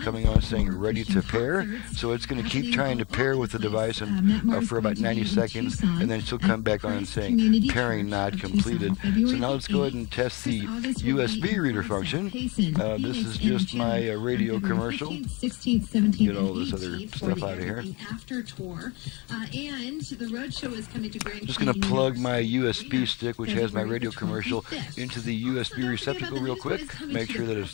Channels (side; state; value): right; quieter; 27.2 dB